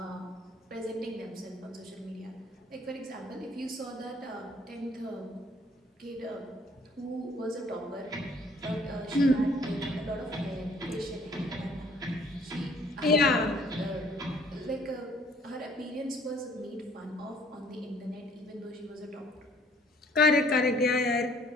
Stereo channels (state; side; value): normal; both; correlation 0.58